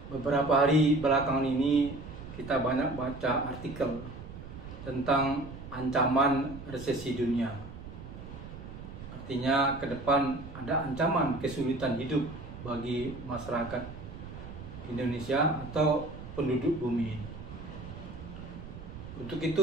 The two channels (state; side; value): noise; right; rumble, 12 dB below the sound